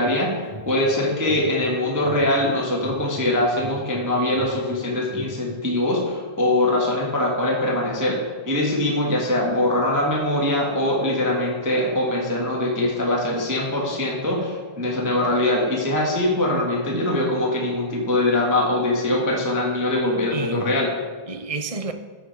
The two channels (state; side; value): late; left; 1.6 ms